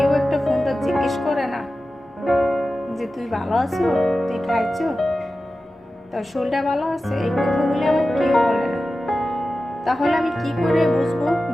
একটা ফোনটা জিজ্ঞেস করে না যে তুই ভালো আছো, তুই খাইছো, তোর শরীরটা ভালো আছে, এই কথাগুলি আমার কেউ বলে না। তাহলে আমি কি করে বুঝবো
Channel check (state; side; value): normal; both; correlation 0.94